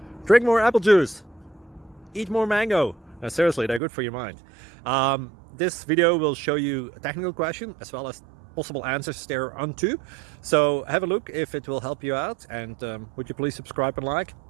Drink more apple juice. Eat more mango. No, seriously, they're good for your mind. This video will show you a technical question as well as possible answers thereunto. So have a look if it will help you out, and would you please subscribe and like?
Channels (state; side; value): drops out; left; at 3.8 s